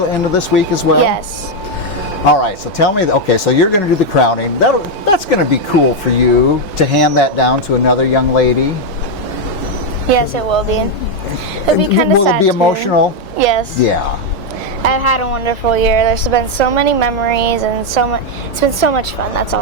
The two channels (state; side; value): late; right; 3.0 ms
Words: this week as well? Yes. All right, so tell me, okay, so you're going to do the crowning. That's going to be cool for you to hand that down to another young lady. Yes, it will be. It'll be kind of sad. Will it be too. emotional? Yes. Yeah. I've had a wonderful year. There's been so many memories and it's been so much fun. That's